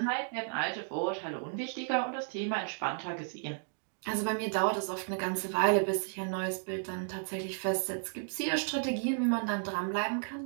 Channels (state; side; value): silent; left; digital silence